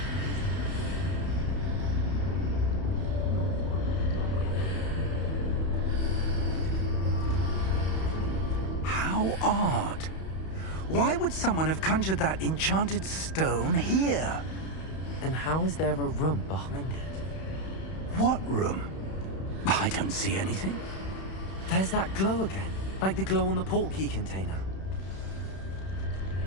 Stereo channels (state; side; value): late; right; 31 ms